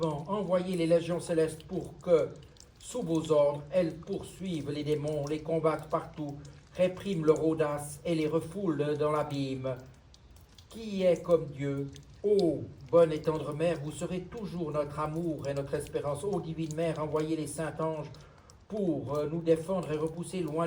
envoyez les légions célestes pour que, sous vos ordres, elles poursuivent les démons, les combattent partout, répriment leur audace et les refoulent dans l'abîme. Qui est comme Dieu? Ô bonne et tendre mère, vous serez toujours notre amour et notre espérance. Ô divine mère, envoyez les saints anges pour nous défendre et repousser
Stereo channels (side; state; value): both; identical; correlation 1.00